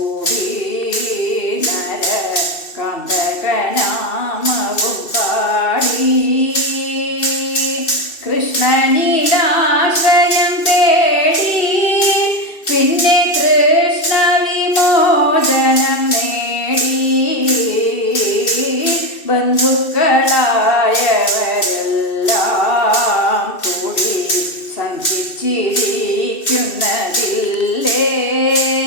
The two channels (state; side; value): late; right; 2.6 ms